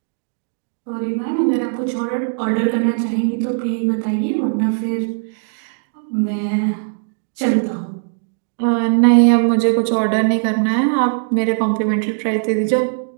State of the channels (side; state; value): left; silent; 64 dB below the other